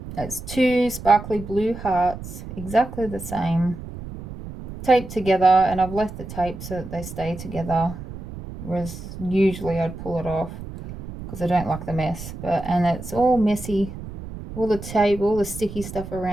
it's two sparkly blue hearts, exactly the same, taped together, and I've left the tape so that they stay together, whereas usually I'd pull it off because I don't like the mess. And it's all messy. All the tape, all the sticky stuff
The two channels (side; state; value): right; noise; rumble, 11 dB below the sound